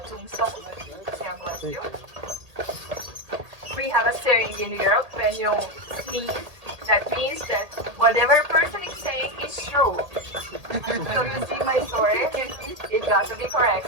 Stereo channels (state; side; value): late; left; 1.8 ms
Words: tombstones. Yeah, bless you. We have a saying in Europe when you sneeze. That means that whatever person is saying is true. So you see my story, it got to be